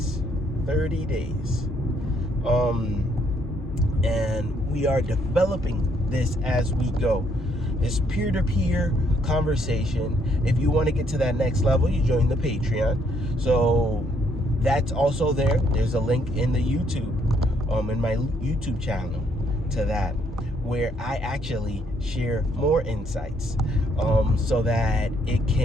And we are developing this as we go. This peer-to-peer conversation. If you want to get to that next level, you join the Patreon. So that's also there. There's a link in the YouTube, in my YouTube channel to that, where I actually share more insights, so that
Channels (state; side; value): normal; both; correlation 0.70